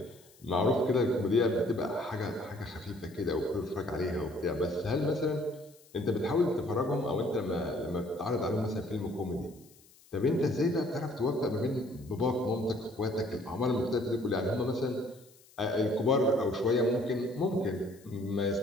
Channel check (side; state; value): left; noise; hiss, 27 dB below the sound